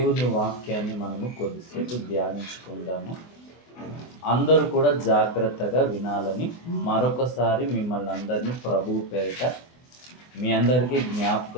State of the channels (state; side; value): late; right; 24 ms